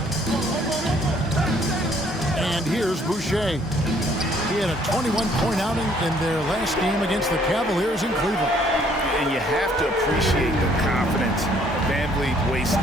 And here's Boucher. He had a 21-point outing in their last game against the Cavaliers in Cleveland. And you have to appreciate the confidence. Van Vliet wastes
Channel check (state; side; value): normal; both; correlation 0.63